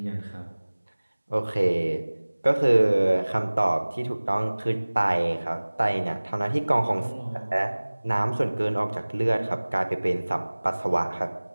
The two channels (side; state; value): both; inverted; correlation -1.00